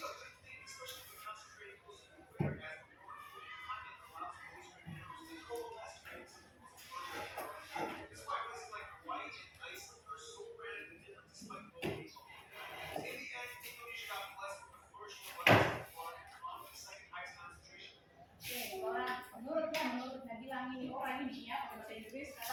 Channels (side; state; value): both; identical; correlation 1.00